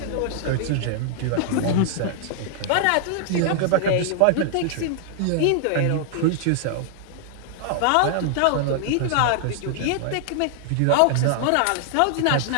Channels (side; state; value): both; different; correlation -0.01